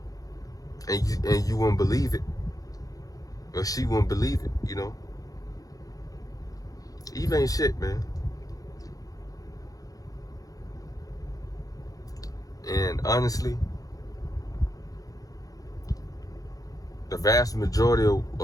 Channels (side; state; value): right; late; 0.17 ms